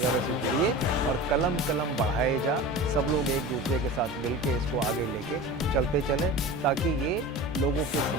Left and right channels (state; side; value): normal; both; correlation 0.33